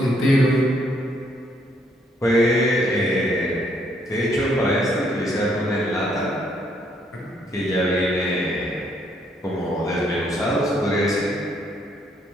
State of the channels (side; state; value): both; normal; correlation 0.70